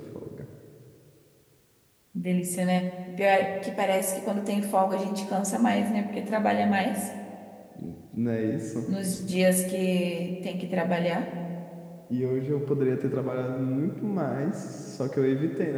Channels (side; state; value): both; identical; correlation 1.00